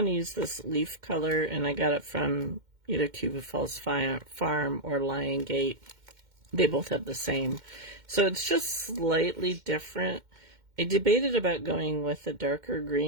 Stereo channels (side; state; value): left; late; 2.1 ms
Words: to use this leaf color, and I got it from either Cuba Falls Farm or Lion Gate. They both have the same. So it's just slightly different. I debated about going with a darker